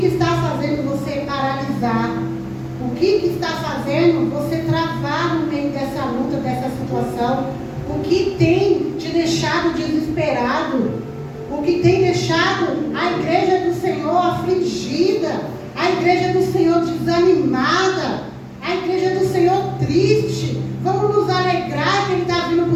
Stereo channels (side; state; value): both; identical; correlation 1.00